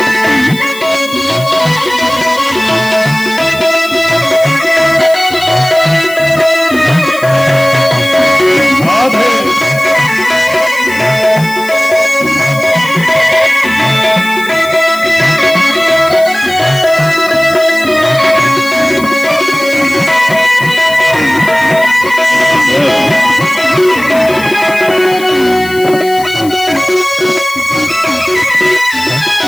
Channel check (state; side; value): noise; left; hiss, 16 dB below the sound